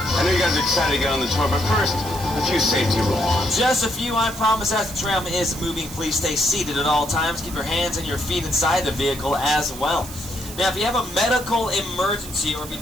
know you guys are excited to get on the tour, but first, a few safety rules. Just a few, I promise. As the tram is moving, please stay seated at all times. Keep your hands and your feet inside the vehicle as well. Now, if you have a medical emergency or if you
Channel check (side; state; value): right; noise; hiss, 13 dB below the sound